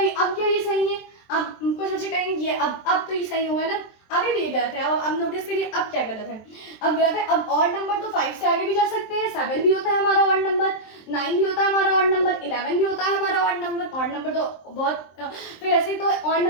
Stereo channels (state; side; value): late; right; 23 ms